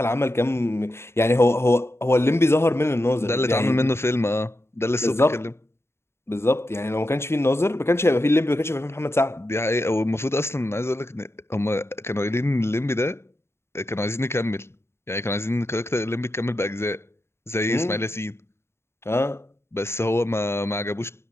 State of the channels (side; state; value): right; late; 0.12 ms